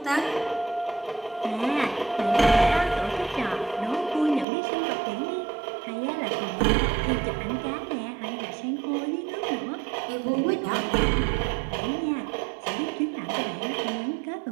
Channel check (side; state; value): left; drops out; at 4.5 s